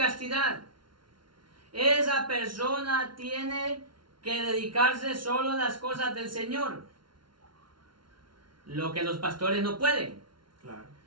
Esa persona tiene que dedicarse solo a las cosas del Señor. Lo que los pastores no pueden. claro,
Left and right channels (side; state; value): left; late; 0.73 ms